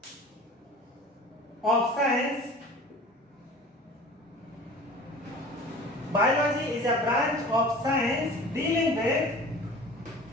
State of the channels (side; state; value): both; normal; correlation 0.42